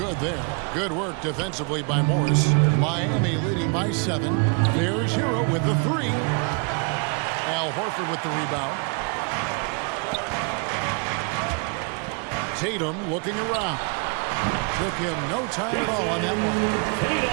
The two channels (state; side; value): quieter; left; 35.0 dB